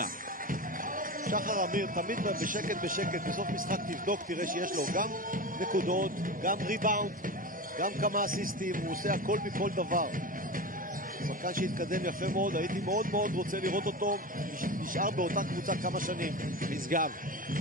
שחר אמיר תמיד בשקט, בסוף משחק תבדוק, תראה שיש לו גם נקודות, גם ריבאונד, גם כמה אסיסטים, הוא עושה הכל מכל דבר. שחקן שהתקדם יפה מאוד, הייתי מאוד מאוד רוצה לראות אותו נשאר באותה קבוצה כמה שנים. משגב,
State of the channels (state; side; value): normal; both; correlation 0.26